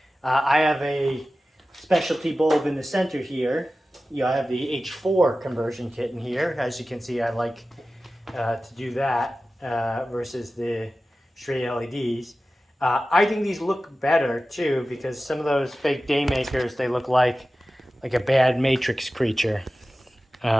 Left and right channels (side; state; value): both; normal; correlation 0.95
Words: I have a specialty bulb in the center here. I have the H4 conversion kit in here. As you can see, I like to do that versus the straight LEDs. I think these look better too, because some of those fake day makers, they look like a bad Matrix creature.